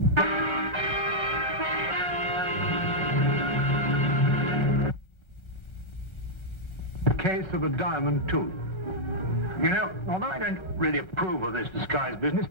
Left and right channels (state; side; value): late; right; 1.3 ms